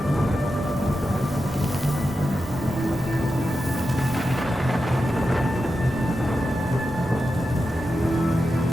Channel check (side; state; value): both; normal; correlation 0.90